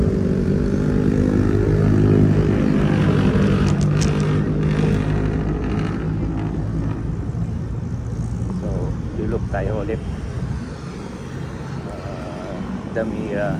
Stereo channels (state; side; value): identical; both; correlation 1.00